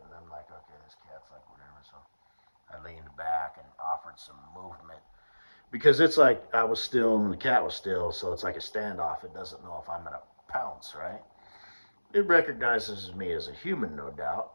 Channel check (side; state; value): both; inverted; correlation -1.00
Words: and I'm like, okay, this cat's like whatever. So I leaned back and offered some movement because it's like I was still and the cat was still, so it's like a standoff. It doesn't know if I'm gonna pounce, right? It recognizes me as a human, no doubt,